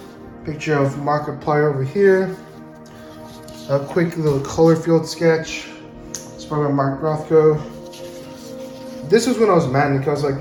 picture of Markiplier over here. A quick little color field sketch. It's by Mark Rothko. This was when I was manic. I was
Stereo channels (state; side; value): identical; both; correlation 1.00